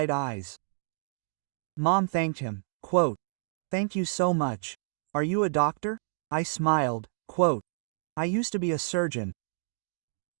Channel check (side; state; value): left; silent; digital silence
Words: eyes. Mom thanked him, quote, "Thank you so much. Are you a doctor?" I smiled, quote, "I used to be a surgeon."